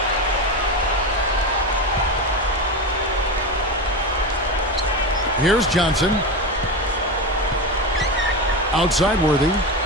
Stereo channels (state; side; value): normal; both; correlation 0.19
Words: Here's Johnson. Outside Worthy.